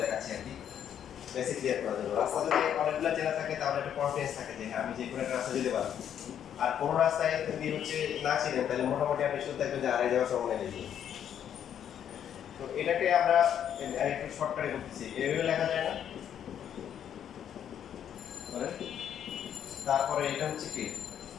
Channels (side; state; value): right; quieter; 9.4 dB